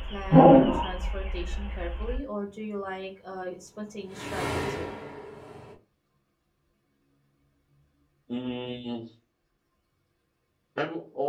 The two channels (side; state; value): both; identical; correlation 1.00